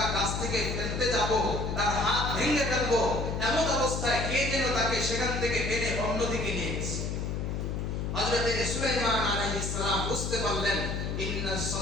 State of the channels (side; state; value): left; noise; hum, 2 dB below the sound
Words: গাছ থেকে ফেলতে যাব, তার হাত ভেঙে ফেলবো, এমন অবস্থায় কে যেন তাকে সেখান থেকে টেনে অন্যদিকে নিয়ে গেছে। হযরত সুলাইমান আলাইহিস সালাম বুঝতে পারলেন, ইন্নাস